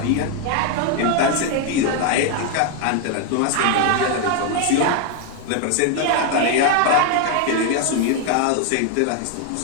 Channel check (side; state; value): both; different; correlation 0.00